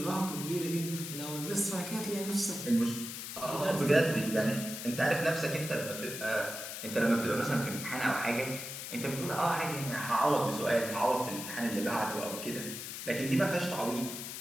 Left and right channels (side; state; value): left; noise; hiss, 7 dB below the sound